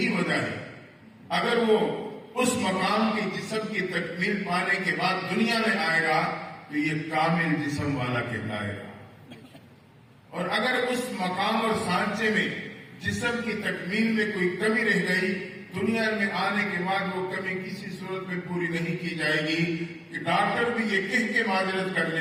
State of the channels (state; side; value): identical; both; correlation 1.00